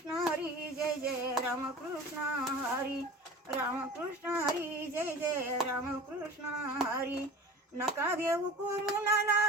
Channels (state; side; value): normal; both; correlation 0.38